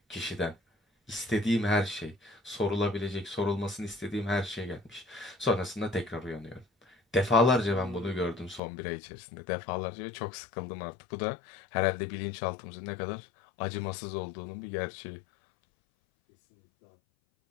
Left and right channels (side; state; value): right; drops out; at 8.6 s